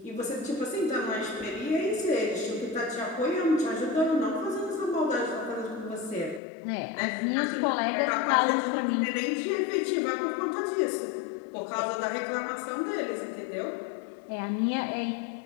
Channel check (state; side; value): drops out; right; at 6.4 s